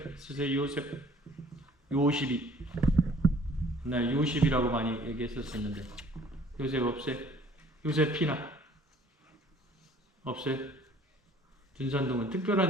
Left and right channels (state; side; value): normal; both; correlation 0.55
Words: 쓰세요? 요셉이. 나 요셉이라고 많이 얘기했었는데 요셉 없어요? 요셉피나 없어요? 준산동은